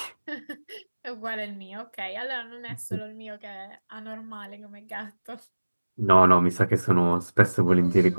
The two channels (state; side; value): inverted; both; correlation -1.00